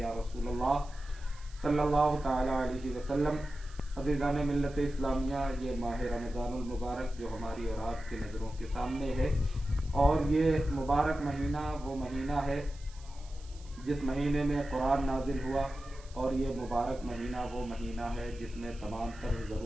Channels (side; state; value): right; noise; hiss, 24 dB below the sound